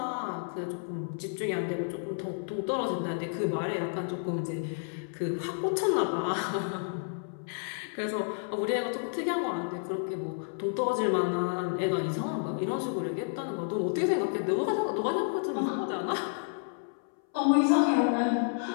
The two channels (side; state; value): right; silent; 57 dB below the other